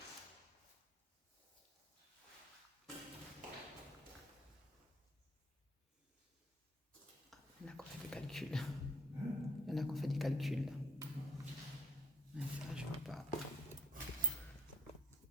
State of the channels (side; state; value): both; normal; correlation 0.60